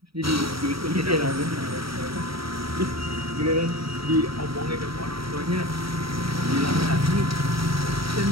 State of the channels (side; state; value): left; late; 0.75 ms